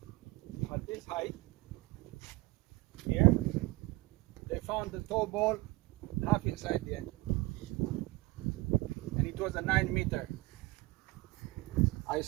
at this height. Here, they found the tow ball half inside the engine. And it was a 9-meter. I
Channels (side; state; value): left; quieter; 21.1 dB